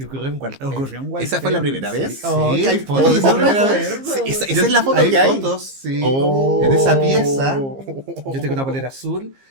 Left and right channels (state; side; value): late; left; 15 ms